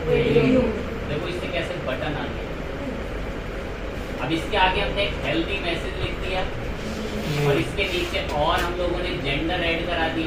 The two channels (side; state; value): both; identical; correlation 1.00